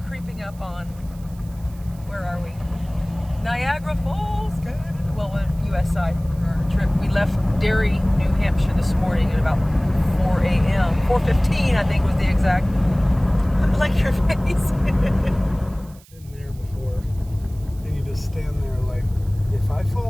creeping up on, where are we? Niagara Falls, well, on the U.S. side for our trip. We left Derry, New Hampshire this morning at about 4 a.m. 4:15, I think was the exact, like your face. Been there before. Then you just stand there like, if I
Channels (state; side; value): noise; right; hiss, 26 dB below the sound